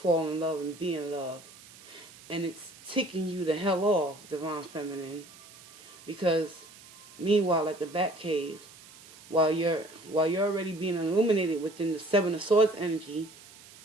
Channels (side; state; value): right; noise; hiss, 21 dB below the sound